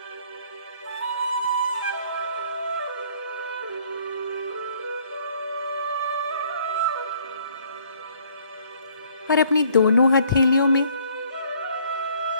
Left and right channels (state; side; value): inverted; both; correlation -0.61